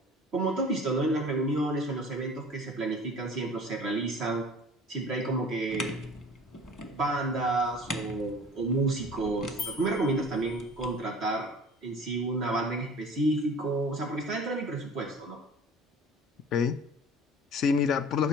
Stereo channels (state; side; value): normal; both; correlation 0.44